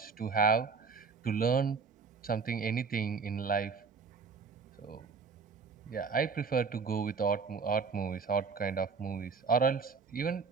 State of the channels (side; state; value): left; quieter; 5.2 dB